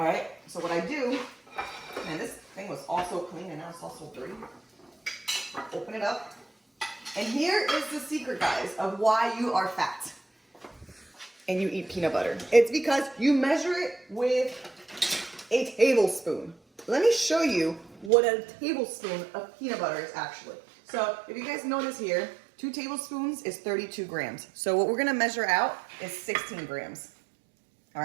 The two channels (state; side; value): drops out; left; at 18.1 s